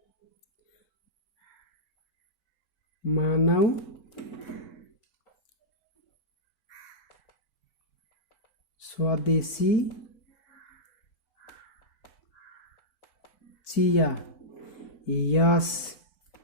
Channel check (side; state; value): right; late; 4.5 ms